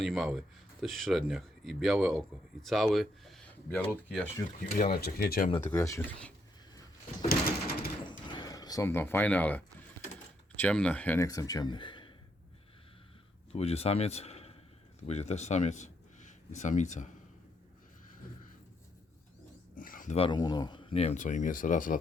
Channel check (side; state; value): both; normal; correlation 0.76